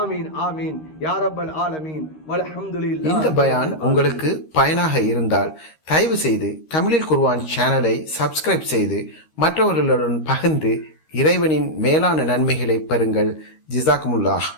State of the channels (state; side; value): late; right; 13 ms